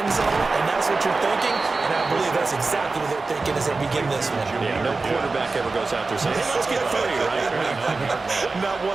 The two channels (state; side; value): quieter; left; 3.8 dB